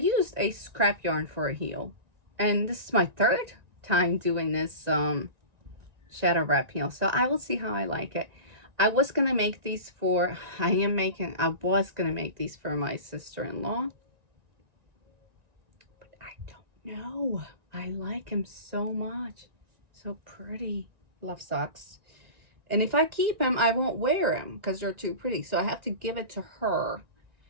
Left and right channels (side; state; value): left; late; 1.9 ms